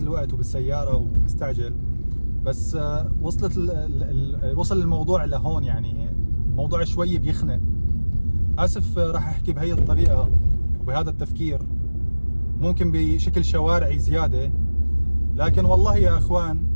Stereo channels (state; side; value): inverted; both; correlation -1.00